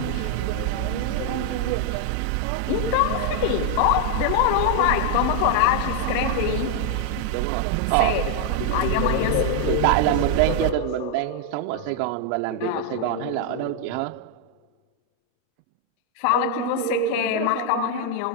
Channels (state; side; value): different; both; correlation 0.00